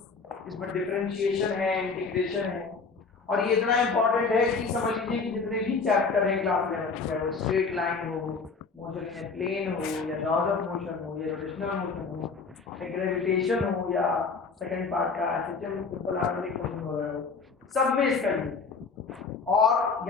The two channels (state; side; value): quieter; right; 4.7 dB